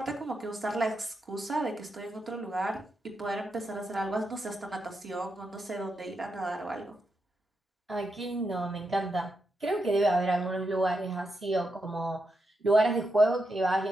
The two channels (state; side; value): normal; both; correlation 0.84